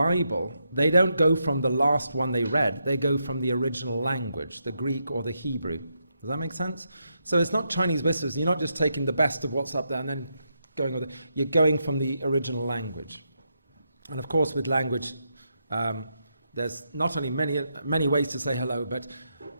they don't go from the last one they read. They go from the original language, the Greek or the Hebrew. Does that make sense? So it's not Chinese whispers. You're not just taking the best of what's up there and then going with it. You're going from the original language. And of course, with language, there's not only many ways to say hello, but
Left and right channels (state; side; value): inverted; both; correlation -0.82